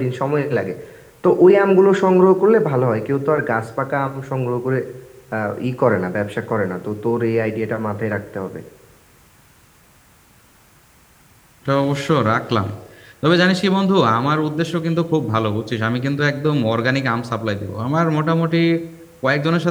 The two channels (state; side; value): identical; both; correlation 1.00